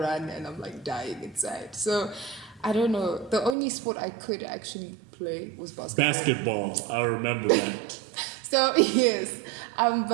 and I'm like dying inside. So, I don't know. The only sport I could actually play was basketball. Basketball, I remember that. So, yes.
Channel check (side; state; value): left; drops out; at 3.6 s